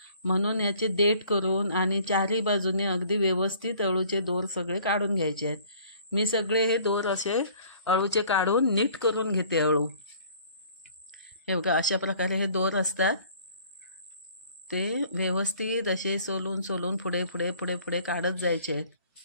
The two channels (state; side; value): inverted; both; correlation -0.54